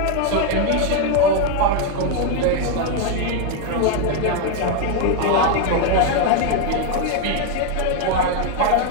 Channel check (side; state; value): both; different; correlation 0.01